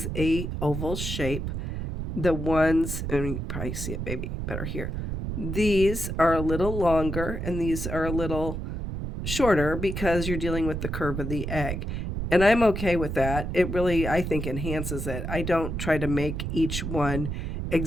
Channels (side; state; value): right; noise; rumble, 4 dB below the sound